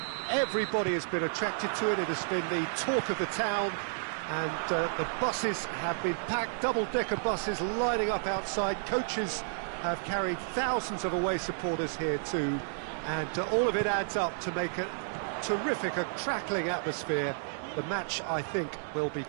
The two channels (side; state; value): left; silent; digital silence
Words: Everybody has been attracted to it. It has been the talk of the town, and the buses have been packed, double-decker buses lining up outside. Coaches have carried thousands of away supporters here too, and all of it adds up to make a terrific, a crackling atmosphere. The match, I think, will be